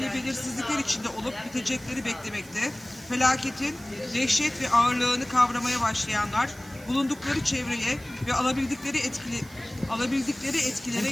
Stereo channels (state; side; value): noise; right; hiss, 21 dB below the sound